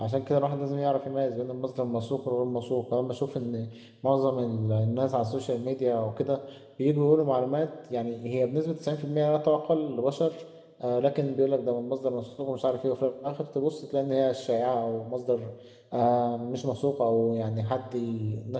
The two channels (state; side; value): identical; both; correlation 1.00